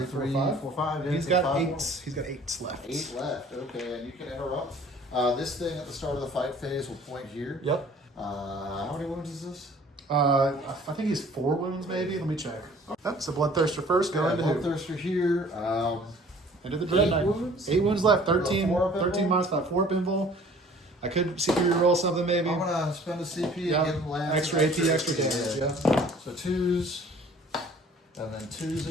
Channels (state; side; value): normal; both; correlation 0.52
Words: 5. 4, 5. Yeah, He's got 5 8. more. He's got 8 left. 8 left. Okay, and you can interrupt. This thing at the start of the fight phase will point here. Yep. How many wounds is this? I think he's 4 wounds, maybe. Let me check. Yep. So Bloodthirster first. Go into Bloodthirster here. Into the Dread Knight. 8 wounds left. 13 minus 5. 4 up invul. I could CP roll something maybe. I'm gonna spend a CP and give him lands. Extra AP, extra damage. Yeah. So 2s, and then 2s